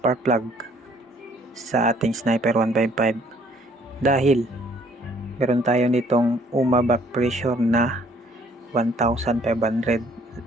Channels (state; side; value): normal; both; correlation 0.61